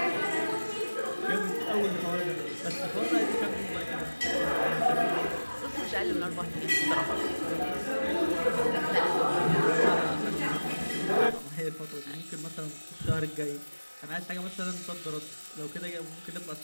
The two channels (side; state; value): both; inverted; correlation -1.00